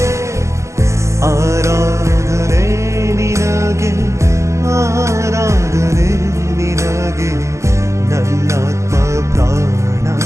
ಆರಾಧನೆ ನಿನಗೆ ಆರಾಧನೆ ನಿನಗೆ ನನ್ನಾತ್ಮ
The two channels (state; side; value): late; left; 0.14 ms